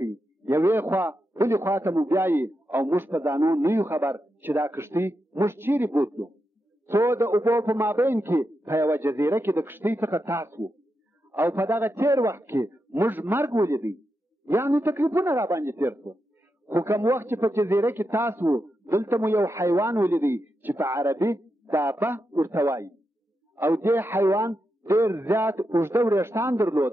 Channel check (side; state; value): both; normal; correlation 0.86